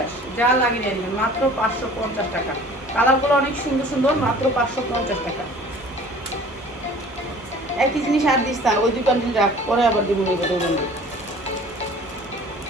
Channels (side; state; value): both; normal; correlation 0.47